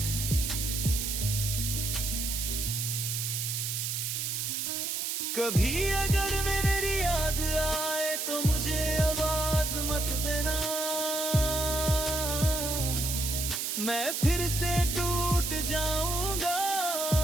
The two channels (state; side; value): noise; right; hiss, 1 dB below the sound